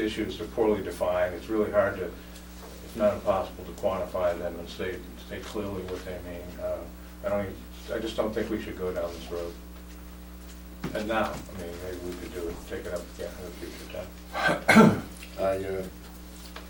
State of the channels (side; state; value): both; identical; correlation 1.00